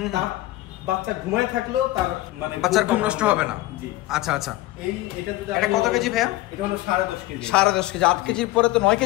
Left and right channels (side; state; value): right; quieter; 17.6 dB